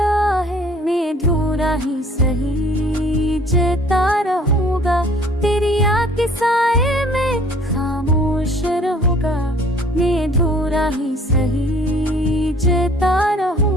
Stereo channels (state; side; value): normal; both; correlation 0.54